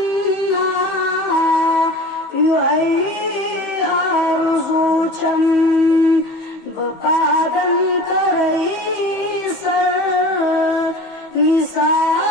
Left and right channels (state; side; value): late; right; 15 ms